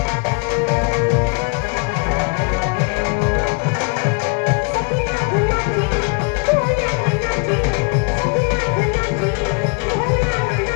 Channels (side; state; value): right; quieter; 33.0 dB